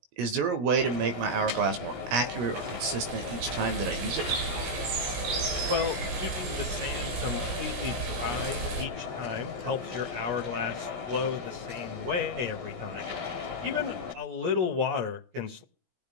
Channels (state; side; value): late; left; 17 ms